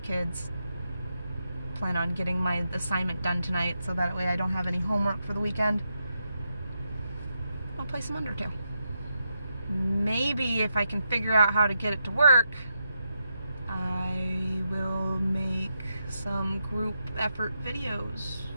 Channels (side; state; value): both; inverted; correlation -0.84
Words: Plan on getting my assignment done tonight so that way I don't have any homework for the weekend. I'll play some Undertale. Maybe if I can figure out how to get it to work, I will make some group effort videos